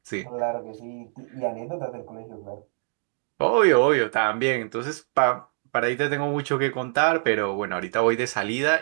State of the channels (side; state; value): left; silent; 56 dB below the other